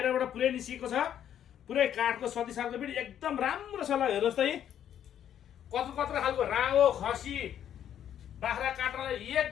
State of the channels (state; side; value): quieter; right; 10.0 dB